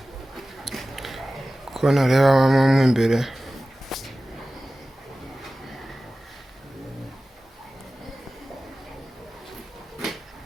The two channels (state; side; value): normal; both; correlation 0.96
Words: Ko nareba mo imbere.